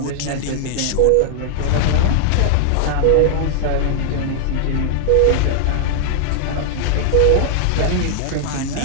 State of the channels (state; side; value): different; both; correlation -0.01